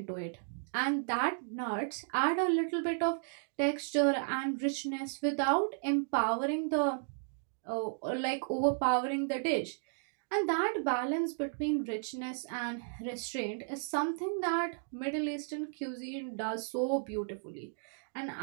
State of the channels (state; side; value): silent; left; digital silence